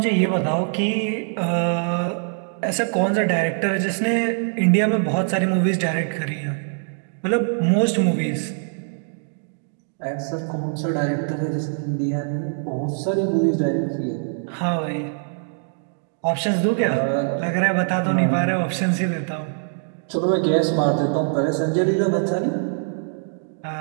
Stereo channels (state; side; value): silent; left; 64 dB below the other